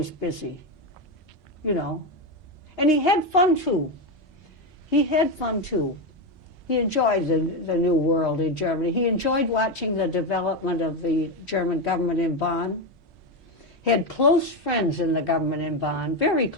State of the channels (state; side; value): normal; both; correlation 0.11